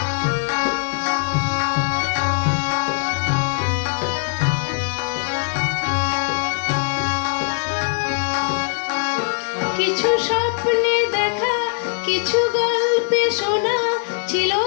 কিছু স্বপ্নে দেখা, কিছু গল্পে শোনা, ছিল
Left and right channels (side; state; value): right; silent; digital silence